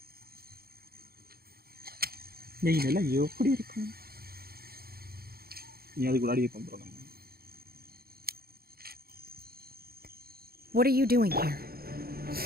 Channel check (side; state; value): left; late; 0.44 ms